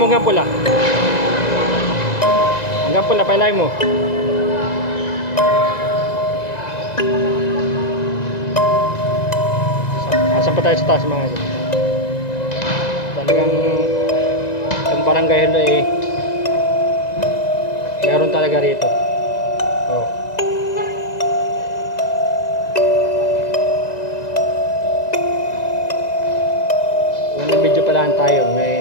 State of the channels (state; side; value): late; right; 1.9 ms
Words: hanggang pula. Hanggang pula, pailay mo. Asan pa tayo sa taas mga idol. Talagang yung barangay halo eh meron talaga rito. Oh. Unang video pa lang tayo,